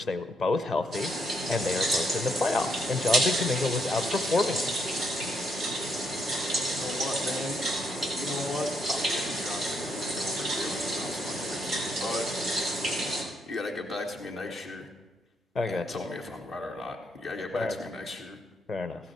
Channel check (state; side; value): normal; both; correlation 0.75